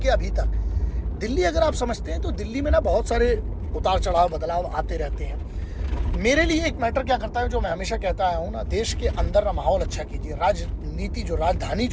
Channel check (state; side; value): identical; both; correlation 1.00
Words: अभी तक दिल्ली अगर आप समझते हैं तो दिल्ली में ना बहुत सारे उतार चढ़ाव बदलाव आते रहते हैं। मेरे लिए एक मैटर क्या करता है जो मैं हमेशा कहता आया हूँ ना, देश के अंदर ना माहौल अच्छा कीजिए। राजनीति जो राजधानी